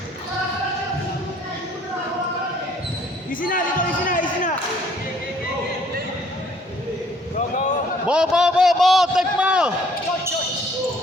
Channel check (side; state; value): both; normal; correlation 0.60